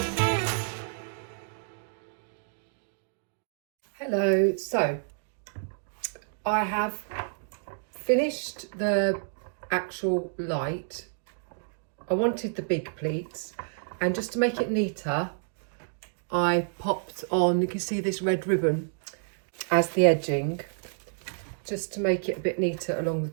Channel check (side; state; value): left; silent; digital silence